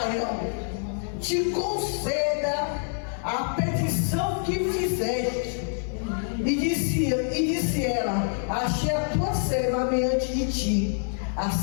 te conceda a petição que fizeste. E disse ela: achei a tua serva mediante de ti.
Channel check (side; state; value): right; silent; 57 dB below the other